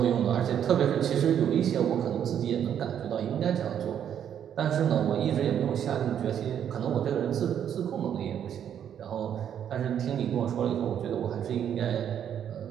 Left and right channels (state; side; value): quieter; left; 9.3 dB